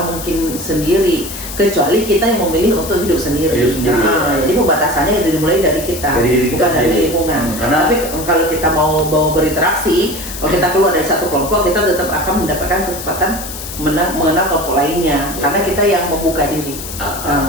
mungkin sendiri kecuali kita yang memilih untuk hidup sendiri. Jadi pembatasannya itu dimulai dari kita, bukan dari lingkungan. Tapi kalau kita mau berinteraksi, kalau kita keluar dari satu kelompok, kita tetap akan mendapatkan kesempatan mengenal kelompok lainnya, karena kita yang membuka diri.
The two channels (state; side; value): noise; left; hiss, 10 dB below the sound